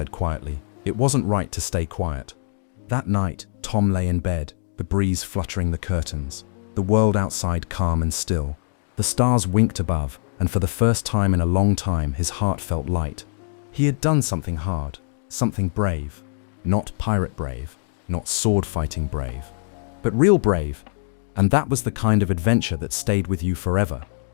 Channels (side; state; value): right; silent; digital silence